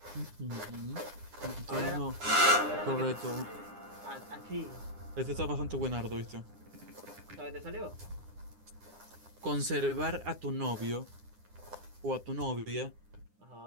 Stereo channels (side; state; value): left; late; 9.8 ms